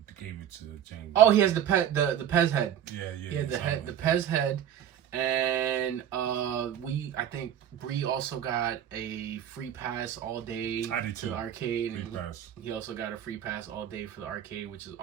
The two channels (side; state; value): left; quieter; 10.0 dB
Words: gave it to Jamie. Oh, he has the Pez head. Yeah. He had the Pez head. And I think Bree also got a free pass all day to the arcade. And he also got a free pass all day for the arcade, which is